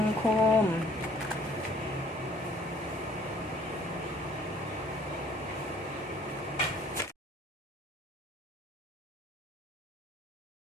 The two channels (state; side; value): normal; both; correlation 0.57